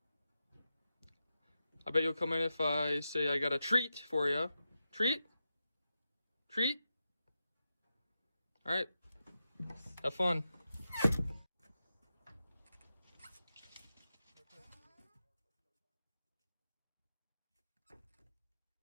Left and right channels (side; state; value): both; inverted; correlation -0.89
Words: I bet you'll come in if I say I got a treat for you. Treat? Treat? Alright. Have fun.